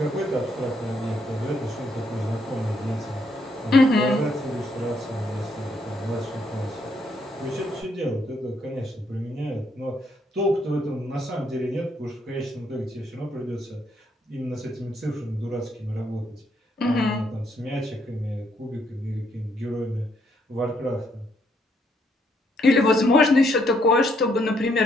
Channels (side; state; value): both; normal; correlation 0.73